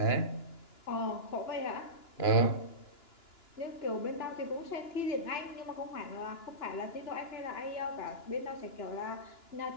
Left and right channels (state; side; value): late; right; 2.9 ms